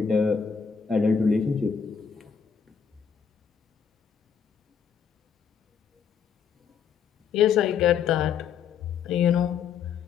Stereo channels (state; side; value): quieter; right; 6.9 dB